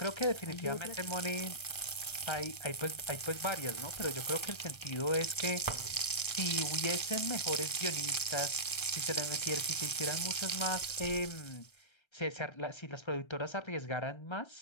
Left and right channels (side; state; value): right; late; 1.3 ms